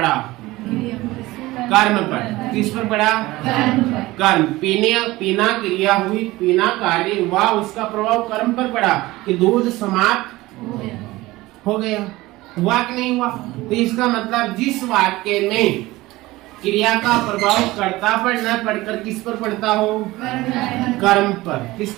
कर्म पर। किस पर पड़ा? कर्म। पीना क्रिया हुई, पीना कार्य हुआ, उसका प्रभाव कर्म पर पड़ा कि दूध समाप्त हो गया। हुआ कि नहीं हुआ? तो इसका मतलब जिस वाक्य में क्रिया का प्रभाव कर्ता पर न पड़कर किस पर पड़ता हो? कर्म पर। किस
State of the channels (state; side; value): quieter; left; 19.1 dB